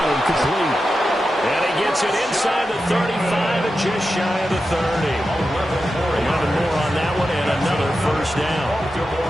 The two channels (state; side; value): normal; both; correlation 0.91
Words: complete. And he gets it inside the 35 and just shy of the 30. 11 more on that one and another 1st down.